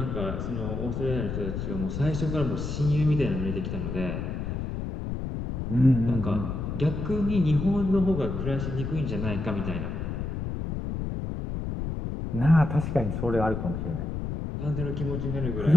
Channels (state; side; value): noise; left; rumble, 4 dB below the sound